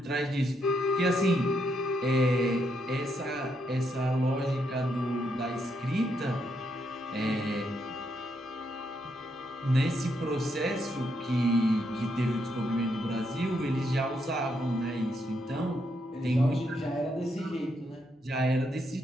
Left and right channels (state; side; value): normal; both; correlation 0.78